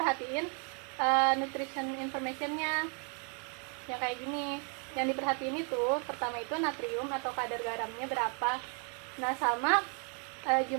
nutrition informationnya yang kayak gini. Yang diperhatiin itu pertama itu natrium atau kadar garamnya berapa. Nah sama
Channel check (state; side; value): quieter; left; 39.2 dB